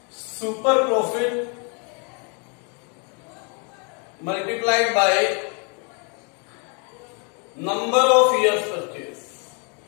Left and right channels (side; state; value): right; quieter; 37.1 dB